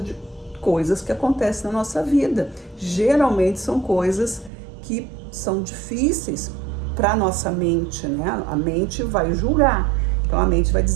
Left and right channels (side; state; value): left; drops out; at 4.5 s